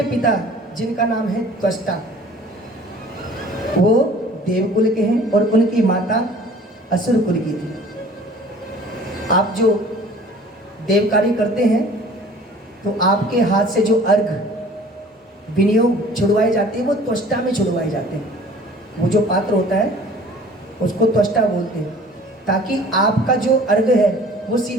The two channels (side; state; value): both; normal; correlation 0.49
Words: पिता जिनका नाम है त्वष्टा, वो देवकुल के हैं और उनकी माता असुर कुल की थी। आप जो देव कार्य करते हैं तो आपके हाथ से जो अर्घ विनियोग छुड़वाए जाते हैं वो त्वष्टा में छुड़वाए जाते हैं। वो जो पात्र होता है उसको त्वष्टा बोलते हैं, ताकि आपका जो अर्घ है वो